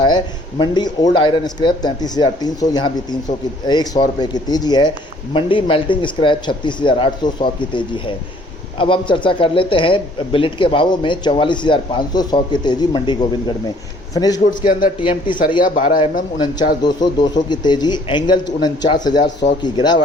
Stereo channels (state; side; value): normal; both; correlation 0.58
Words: है। मंडी ओल्ड आयरन स्क्रैप 33,300, यहाँ भी 100 रुपये की तेज़ी है। मंडी मेल्टिंग स्क्रैप 36,800, 100 की तेज़ी है। अब हम चर्चा कर लेते हैं बिलेट के भावों में 44,500, 100 की तेज़ी मंडी गोविंदगढ़ में। फिनिश गुड्स के अंदर टीएमटी सरिया 12 mm 49,200, 200 की तेज़ी। एंगल 49,000, 100 की